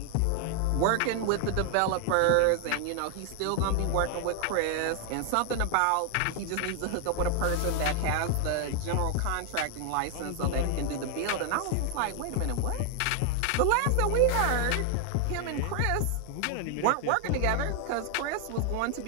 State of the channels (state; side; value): different; both; correlation 0.00